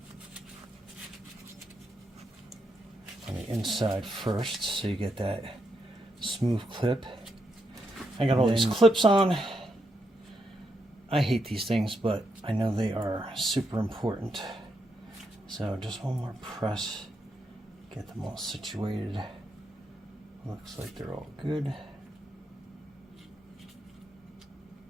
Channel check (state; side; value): normal; both; correlation 0.81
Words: on the inside first, so you get that smooth clip. I got all these clips on. I hate these things, but I know they are super important. So just one more press, get them all situated. Looks like they're all good.